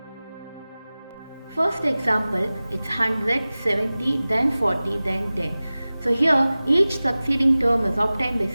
First example, it's 100, 70, then 40, then 10. So here, each succeeding term is obtained by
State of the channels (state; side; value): inverted; both; correlation -0.97